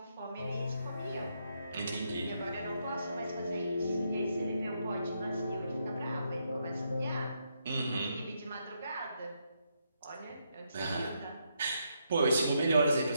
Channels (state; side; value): inverted; both; correlation -0.79